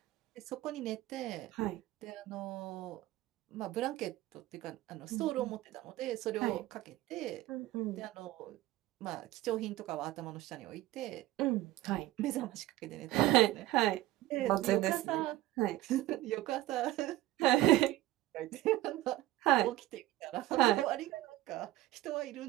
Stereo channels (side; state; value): left; quieter; 16.0 dB